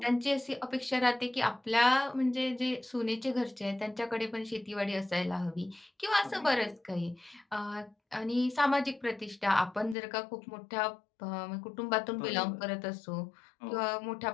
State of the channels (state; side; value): drops out; right; at 10.0 s